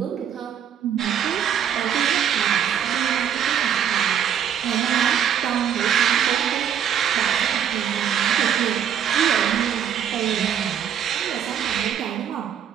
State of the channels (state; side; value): quieter; left; 8.9 dB